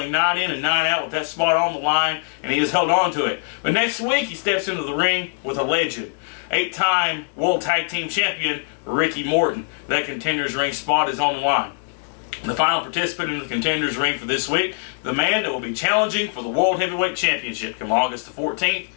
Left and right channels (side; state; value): right; silent; digital silence